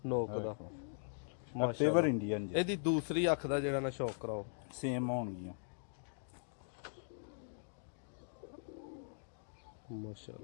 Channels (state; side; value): silent; right; digital silence